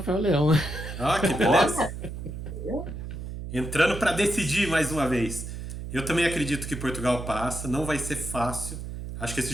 Leão, né? Ah, que beleza. Olha, Entrando para decidir mais uma vez. Eu também acredito que Portugal passa, não vai ser fácil. Acho que esse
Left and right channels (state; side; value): noise; right; hum, 8 dB below the sound